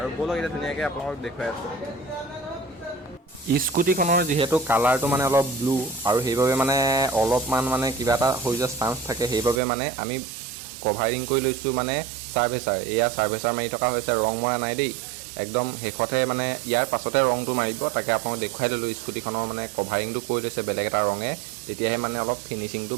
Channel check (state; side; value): drops out; left; at 9.6 s